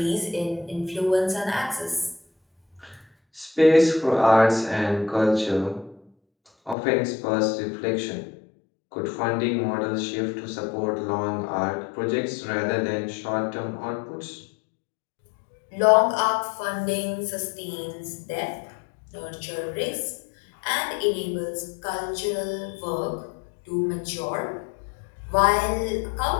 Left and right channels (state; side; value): drops out; right; at 6.8 s